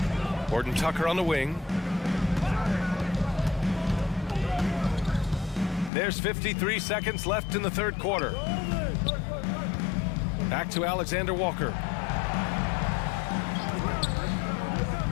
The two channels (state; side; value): drops out; right; at 5.9 s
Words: Horton Tucker on the wing. There's 53 seconds left in the third quarter. Back to Alexander Walker.